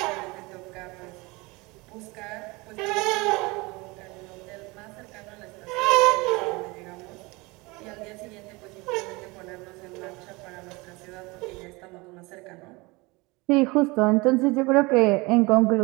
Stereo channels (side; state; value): left; quieter; 24.5 dB